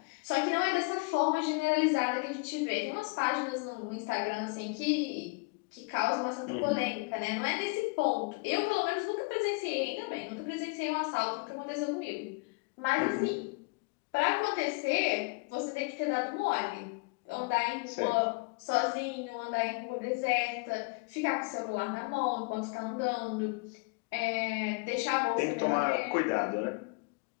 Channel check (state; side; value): quieter; right; 30.2 dB